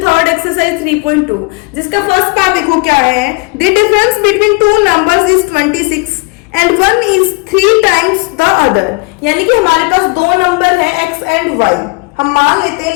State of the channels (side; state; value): right; quieter; 28.2 dB